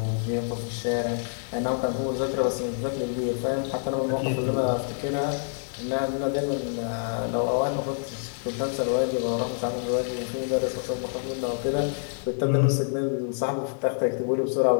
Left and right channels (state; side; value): silent; right; 60 dB below the other